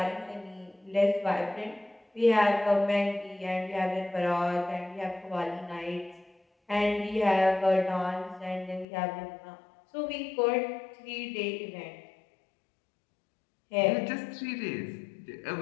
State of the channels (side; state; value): right; drops out; at 8.8 s